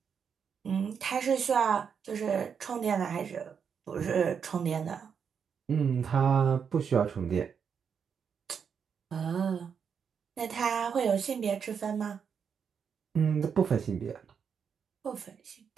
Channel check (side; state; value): left; quieter; 6.9 dB